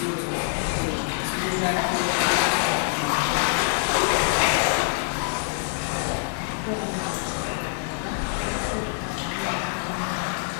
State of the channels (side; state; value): right; silent; 62 dB below the other